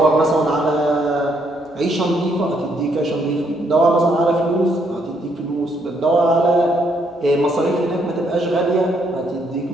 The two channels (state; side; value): normal; both; correlation 0.72